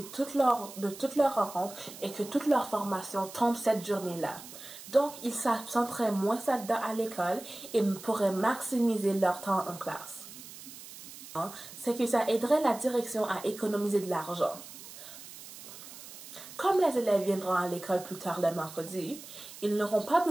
toutes leurs rencontres et que toute leur formation tombe cette journée-là. Donc, ils s'absenteraient moins à l'école et pourraient maximiser leur temps en classe. C'est que ça aiderait la direction à économiser de l'argent. Comme les élèves viendront à l'école plus tard le mercredi, ils n'auront pas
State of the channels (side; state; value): right; noise; hiss, 15 dB below the sound